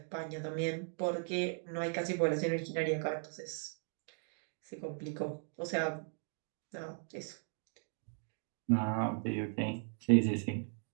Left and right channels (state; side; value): silent; left; 53 dB below the other